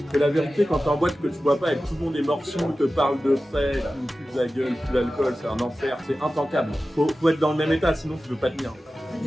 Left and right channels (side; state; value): both; normal; correlation 0.95